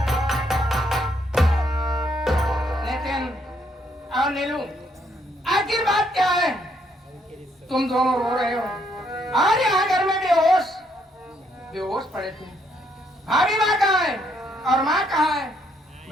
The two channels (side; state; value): both; normal; correlation 0.71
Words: नितिन और नीलू, आखिर बात क्या है? तुम दोनों रो रहे हो और यहाँ घर में बेहोश बेहोश पड़े थे। भाभी माँ कहाँ है और माँ कहाँ है?